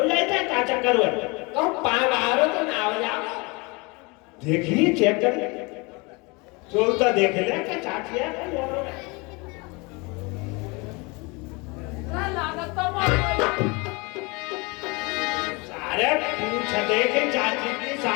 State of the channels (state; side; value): quieter; right; 27.5 dB